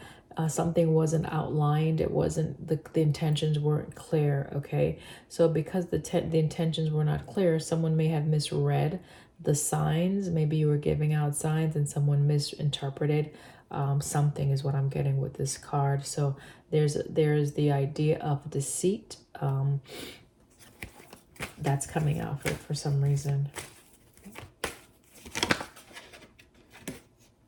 something wasn't outlined. It wasn't, the intentions weren't clear, okay? So because the intentions were not clear, someone may have misread the signs. Maybe you were giving out signs and someone misinterpreted something, is what I'm getting with this card. So there's the idea of deceit that's coming out for some reason.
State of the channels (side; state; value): both; identical; correlation 1.00